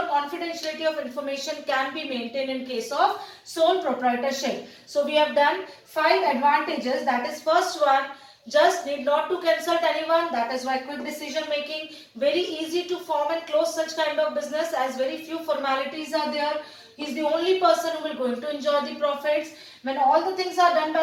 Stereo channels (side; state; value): both; identical; correlation 1.00